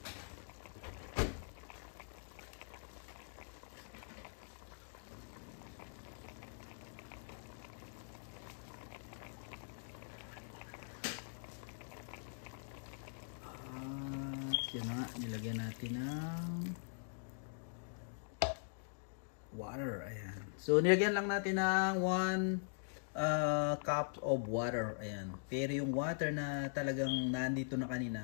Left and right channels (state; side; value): silent; right; digital silence